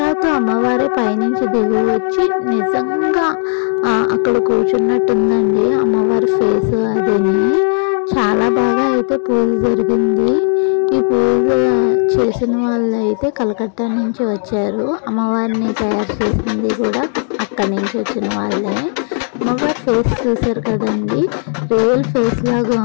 అమ్మవారి పైనుంచి దిగి వచ్చి నిజంగా అక్కడ కూర్చున్నట్టుందండి అమ్మవారి ఫేస్. అదేని చాలా బాగా అయితే పూజ జరిగింది. ఈ పూజ చేసిన వాళ్ళు అయితే కలకత్తా నుంచి వచ్చారు. అమ్మవారిని తయారు చేసింది కూడా అక్కడి నుంచి వచ్చిన వాళ్ళే. అమ్మవారి ఫేస్ చూసారు కదండి, రియల్ ఫేస్ లాగా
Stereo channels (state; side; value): silent; right; 57 dB below the other